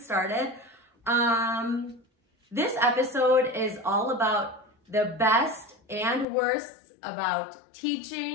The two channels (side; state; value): right; drops out; at 6.2 s